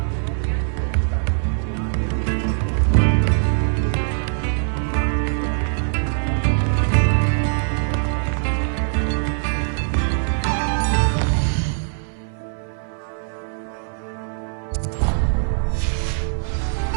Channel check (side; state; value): left; silent; digital silence